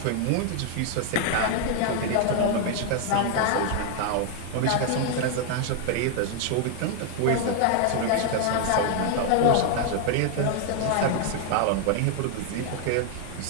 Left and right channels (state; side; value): different; both; correlation 0.00